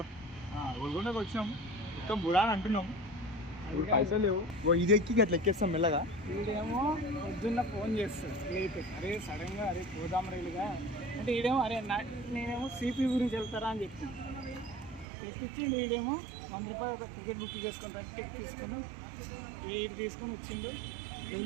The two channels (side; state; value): left; drops out; at 15.1 s